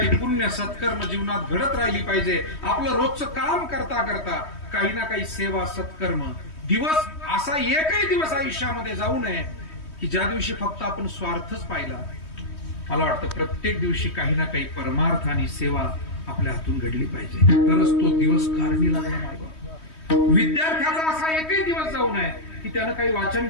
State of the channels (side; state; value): right; late; 3.2 ms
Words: पुण्य सत्कर्म जीवनात घडत राहिली पाहिजे. आपलं रोजचं काम करता करता काही ना काही सेवा सत्कर्म. दिवस असा एकही दिवस आयुष्यामध्ये जाऊ नये की ज्या दिवशी फक्त आपण स्वार्थच पाहिला. मला वाटतं प्रत्येक दिवशी काही ना काही परमार्थ आणि सेवा आपल्या हातून घडली पाहिजे, तरच तो दिवस कारणी लागला पाहिजे. विद्यार्थ्याचा असा एकही दिवस जाऊ नये की त्यानं काही वाचन